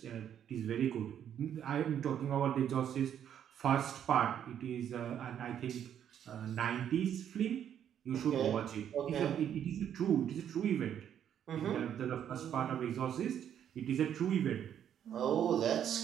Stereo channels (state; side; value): quieter; left; 9.5 dB